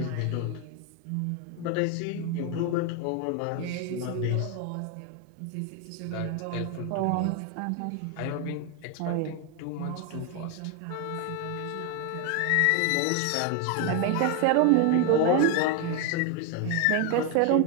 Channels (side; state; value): both; different; correlation 0.01